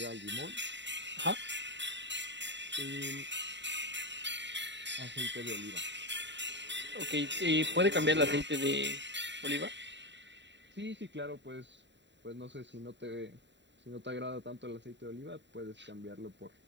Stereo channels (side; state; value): left; late; 0.52 ms